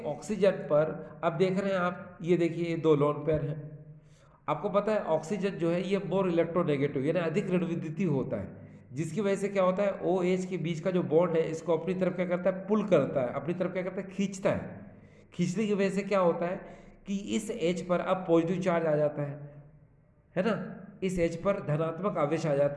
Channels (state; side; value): identical; both; correlation 1.00